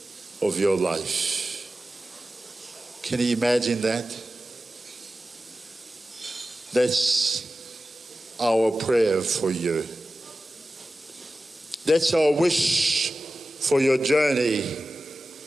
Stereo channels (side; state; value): both; normal; correlation 0.95